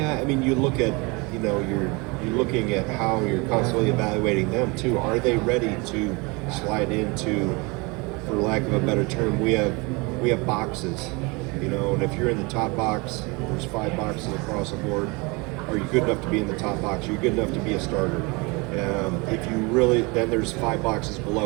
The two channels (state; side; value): quieter; left; 27.4 dB